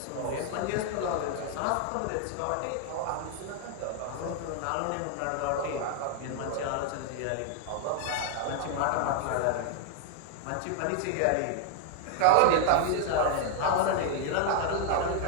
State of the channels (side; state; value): both; different; correlation 0.00